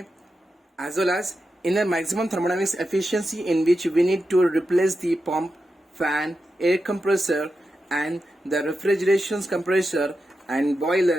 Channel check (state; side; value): normal; both; correlation 0.89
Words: as well as in a maximum thermodynamics efficiency in which we need to replace the pump, fan, air compressor and the refrigeration compressor and